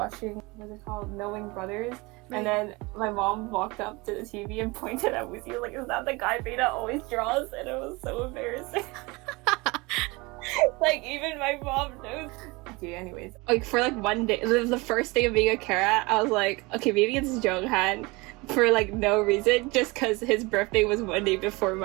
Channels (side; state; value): left; quieter; 24.8 dB